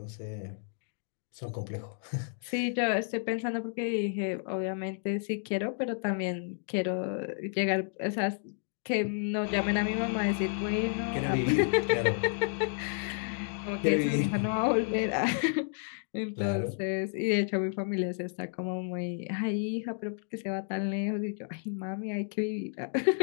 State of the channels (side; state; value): right; silent; 57 dB below the other